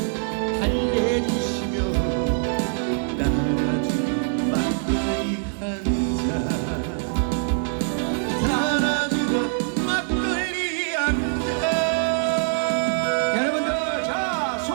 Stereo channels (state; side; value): silent; left; 62 dB below the other